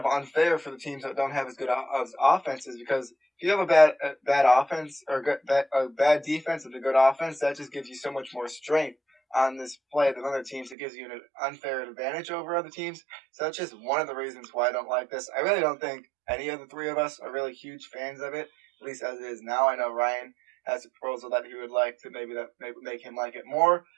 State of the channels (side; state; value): left; drops out; at 10.8 s